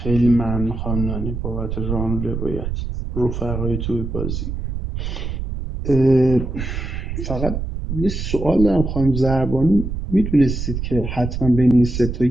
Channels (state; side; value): noise; right; rumble, 4 dB below the sound